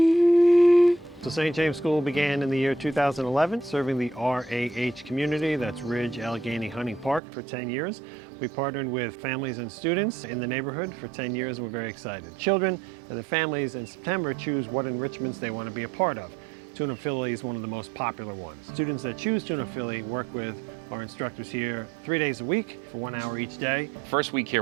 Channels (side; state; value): left; drops out; at 7.2 s